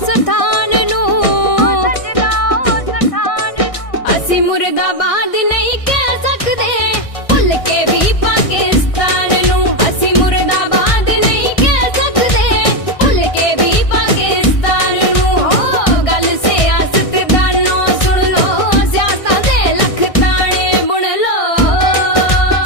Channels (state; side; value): late; right; 1.6 ms